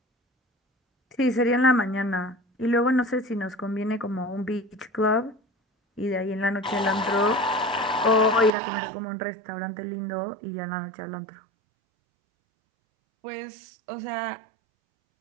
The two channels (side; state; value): left; drops out; at 8.5 s